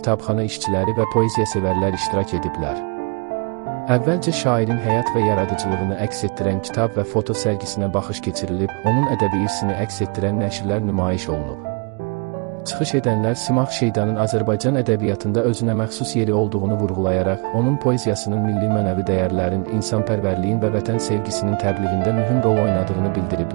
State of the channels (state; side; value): quieter; left; 33.5 dB